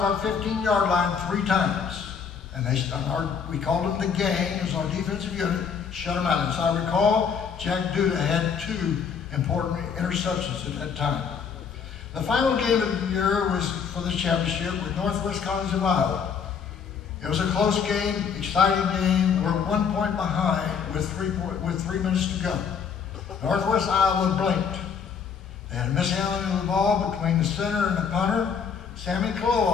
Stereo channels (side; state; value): right; quieter; 6.6 dB